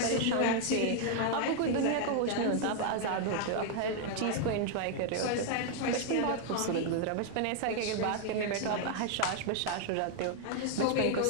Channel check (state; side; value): different; both; correlation 0.00